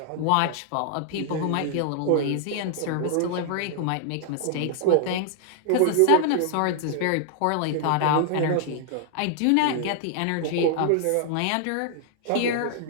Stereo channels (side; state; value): both; different; correlation 0.00